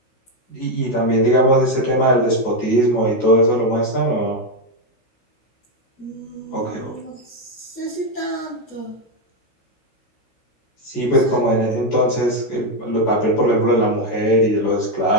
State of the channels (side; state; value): right; late; 16 ms